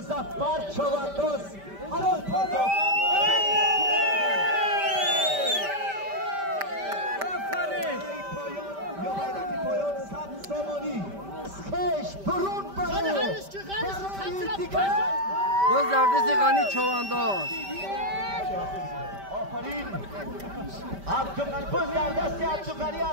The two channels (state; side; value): late; left; 5.1 ms